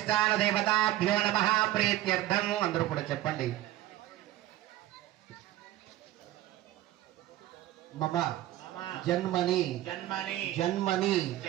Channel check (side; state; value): left; quieter; 14.8 dB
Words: దేవతాభ్యో నమః ప్రీత్యర్థం. అందరూ కూడా చెప్పండి. మమ జన్మని జన్మని జన్మని